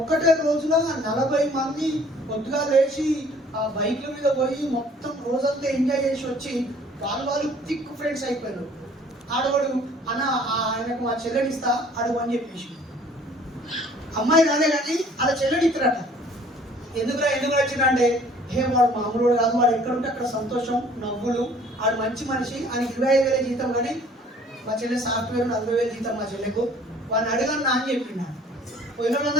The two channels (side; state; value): both; normal; correlation 0.55